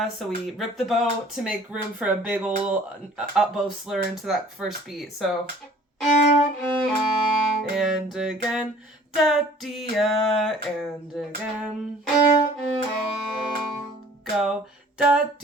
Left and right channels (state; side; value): normal; both; correlation 0.52